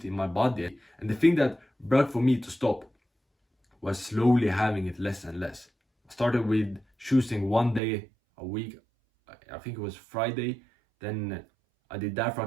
in my body. And the thing that worked for me to stop was slowly having it less and less. I started with choosing 1 day a week. I think it was Friday. Then I did that for a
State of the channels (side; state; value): left; drops out; at 7.8 s